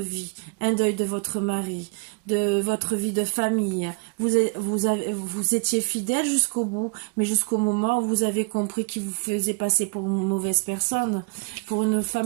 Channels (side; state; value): left; quieter; 33.9 dB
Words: un deuil de votre mari, de votre vie de famille. Vous étiez fidèle jusqu'au bout, mais jusqu'au moment où vous avez compris qu'il vous faisait passer pour une mauvaise personne, pour une